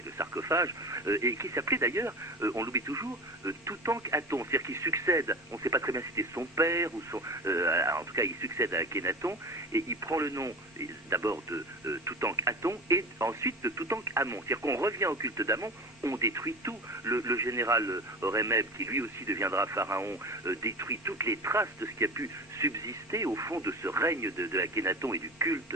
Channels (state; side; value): normal; both; correlation 0.32